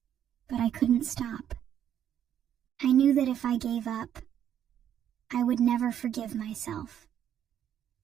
But I couldn't stop. I knew that if I gave up, I would never forgive myself.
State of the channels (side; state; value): left; quieter; 9.9 dB